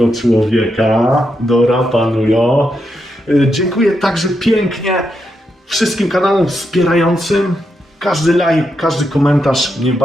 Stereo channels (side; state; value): both; normal; correlation 0.83